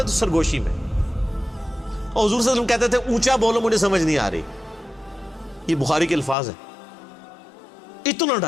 تو سرگوشی میں، اور حضور صلی اللہ علیہ وسلم کہتے تھے اونچا بولو مجھے سمجھ نہیں آ رہی. یہ بخاری کے الفاظ ہیں. اتنا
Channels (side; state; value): right; drops out; at 6.4 s